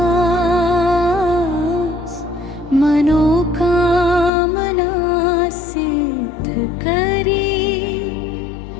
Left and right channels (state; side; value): drops out; right; at 4.3 s